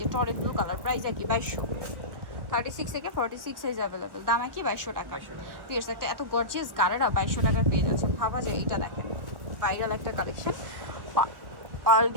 টরে ব্লু কালার। প্রাইস একই 2200। 36 থেকে 46 সাইজ অ্যাভেলেবেল, দাম একই 2200 টাকা। 2200 টাকা। পিয়ার্স একটা এত গর্জিয়াস গারারা 2200 টাকার পেয়ে যাচ্ছে, ভাবা যায়। এইটা দেখেন ভাইরাল একটা কালেকশন, পার্ল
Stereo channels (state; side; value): late; left; 1.3 ms